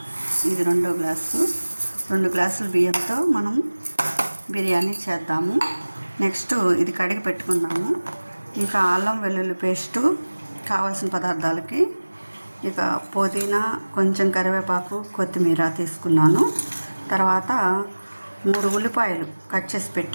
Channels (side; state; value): both; inverted; correlation -1.00